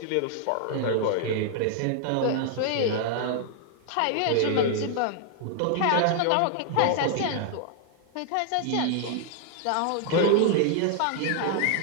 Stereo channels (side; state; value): both; different; correlation 0.00